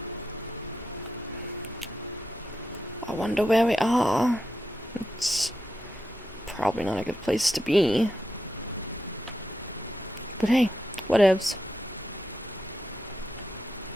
I wonder where we are. It's probably not a good place to be. But hey, whatevs.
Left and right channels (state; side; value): normal; both; correlation 0.86